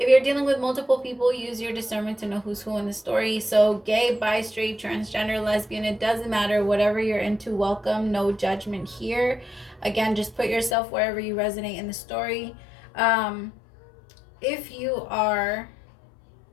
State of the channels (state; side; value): drops out; right; at 10.8 s